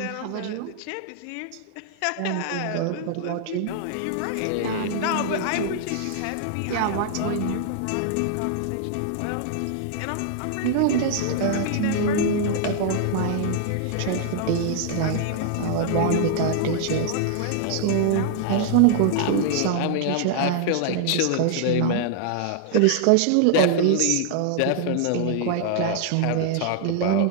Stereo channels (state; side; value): different; both; correlation 0.00